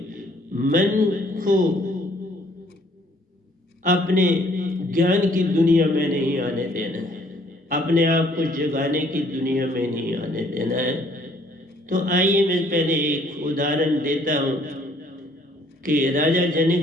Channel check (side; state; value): both; normal; correlation 0.62